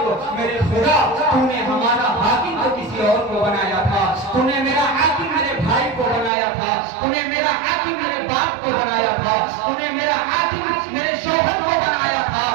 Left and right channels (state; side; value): drops out; left; at 6.3 s